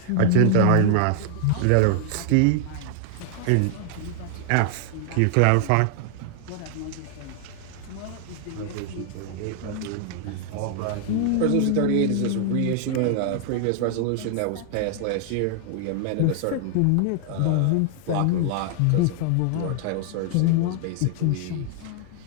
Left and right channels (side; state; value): both; different; correlation 0.00